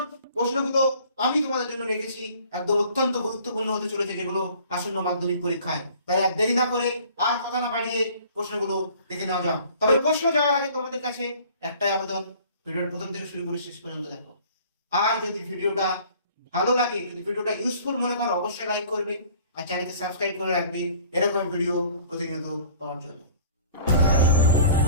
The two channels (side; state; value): both; inverted; correlation -0.50